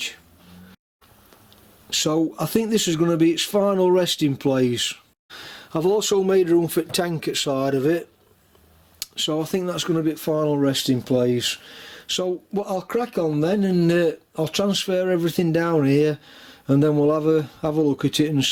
So I think this is going to be its final resting place. I've also made room for the tank at side of it, so I think that's going to be its final resting place. So I'll crack on then, and I'll transfer everything down here, and then we'll have a look at it and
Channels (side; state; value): both; identical; correlation 1.00